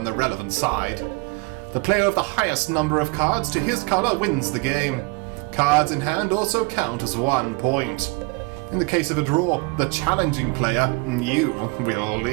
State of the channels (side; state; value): left; quieter; 27.6 dB